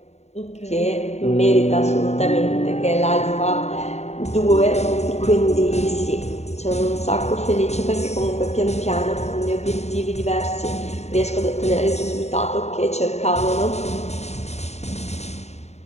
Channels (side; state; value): right; late; 0.32 ms